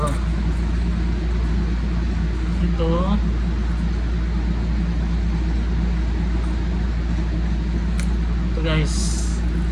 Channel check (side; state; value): both; identical; correlation 1.00